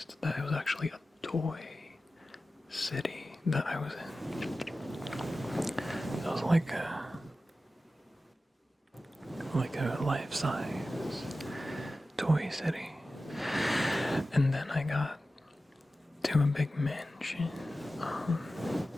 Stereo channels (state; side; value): normal; both; correlation 0.94